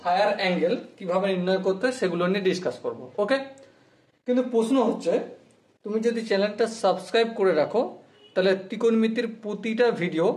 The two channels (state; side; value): identical; both; correlation 1.00